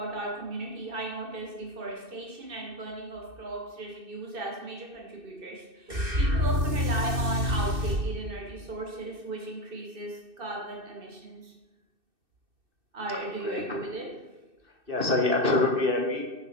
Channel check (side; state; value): left; late; 2.6 ms